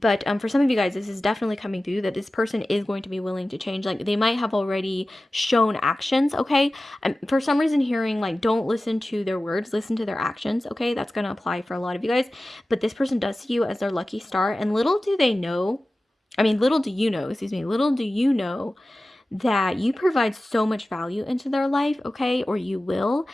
for some of you guys, this is definitely coming through that this person is going to be willing to change. Like they might have already shown actions, okay? I'm for some reason hearing like, don't listen to their words, listen to their actions, okay? That's going to apply for a lot of you guys. But this person does see you as their lucky star, and little do they know, little do you know, little do you know that you provide so much value into their life, okay? Or you will.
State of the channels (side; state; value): both; normal; correlation 0.96